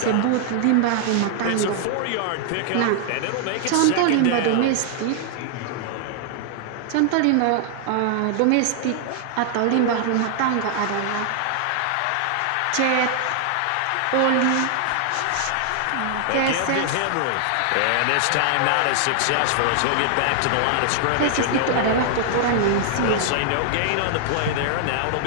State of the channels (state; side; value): different; both; correlation 0.00